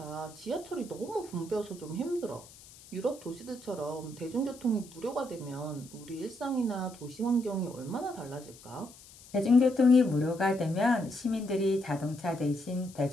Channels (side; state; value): left; noise; hiss, 21 dB below the sound